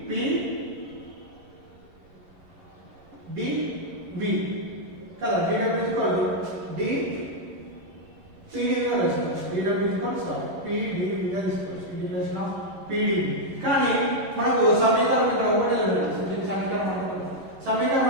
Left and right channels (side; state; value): left; late; 11 ms